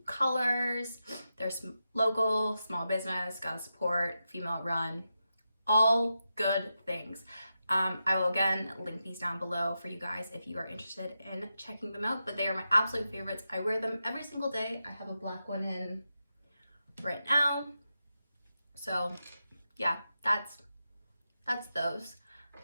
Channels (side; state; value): both; inverted; correlation -0.89